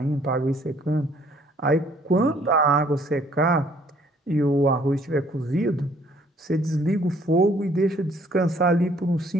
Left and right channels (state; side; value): normal; both; correlation 0.61